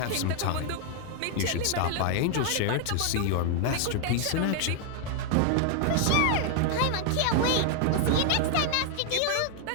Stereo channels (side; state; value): both; different; correlation 0.00